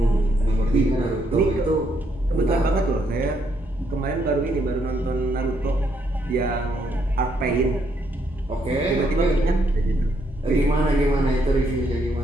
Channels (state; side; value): normal; both; correlation 0.74